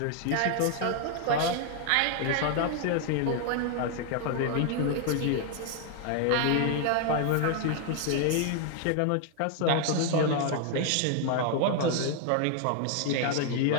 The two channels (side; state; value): both; different; correlation 0.00